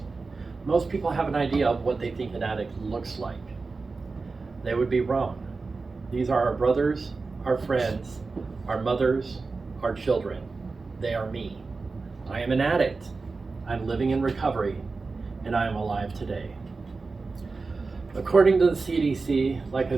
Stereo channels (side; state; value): left; quieter; 4.1 dB